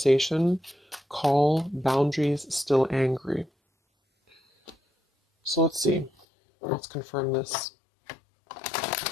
call, boundaries, still angry. So let's see. Let's confirm this.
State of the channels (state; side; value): drops out; right; at 6.2 s